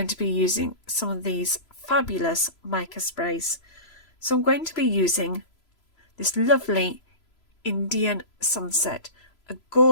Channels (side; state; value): right; late; 3.0 ms